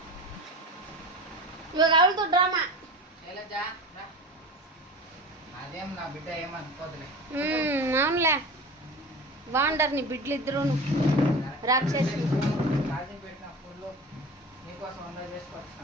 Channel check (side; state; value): both; normal; correlation 0.33